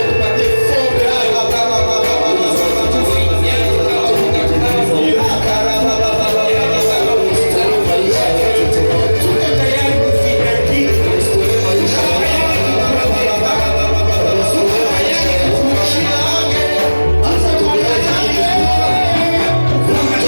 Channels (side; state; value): both; inverted; correlation -1.00